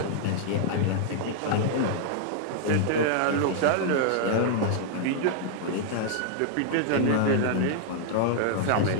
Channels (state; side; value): different; both; correlation -0.01